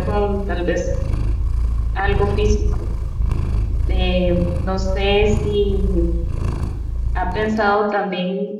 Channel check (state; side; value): identical; both; correlation 1.00